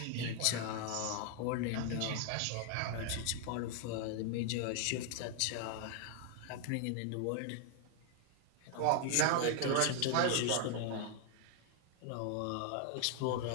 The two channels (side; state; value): both; different; correlation 0.00